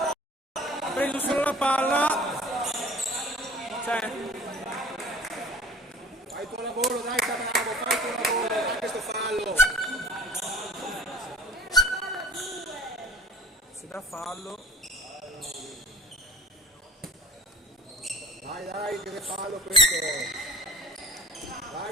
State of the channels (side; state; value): both; normal; correlation 0.46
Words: Ha preso solo la palla. Cioè, Fai il tuo lavoro, dai Bravo, fai il tuo lavoro, fai questo fallo. si dà fallo. Dai, che fallo questo. Dai,